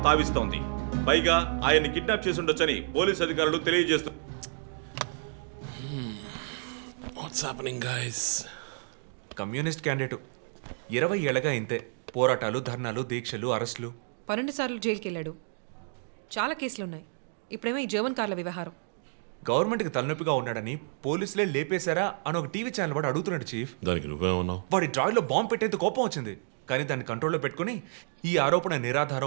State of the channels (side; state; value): left; silent; 58 dB below the other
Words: తావిస్తోంది. పైగా ఆయన్ని కిడ్నాప్ చేసి ఉండొచ్చని పోలీసు అధికారులు తెలియజేస్తున్నారు. What's happening guys? Communist candidate 20 ఏళ్ళగా ఇంతే. పోరాటాలు, ధర్నాలు, దీక్షలు, అరెస్టులు. 12 సార్లు జైలుకి వెళ్ళాడు. చాలా కేసులు ఉన్నాయి. ఇప్పుడేమో ఈ జర్మన్ కార్ల వ్యవహారం. గవర్నమెంట్కి తలనొప్పిగా ఉన్నాడని పోలీసులే లేపేశారా అని ఒక టీవీ ఛానల్ వాడు అడుగుతున్నాడు చీఫ్. దానికి నువ్వేమన్నావు? వాడి డ్రాయిలో బాంబు పెట్టేందుకు కోపం వచ్చింది, కానీ దాన్ని కంట్రోల్లో పెట్టుకుని ఈ ఆరోపణ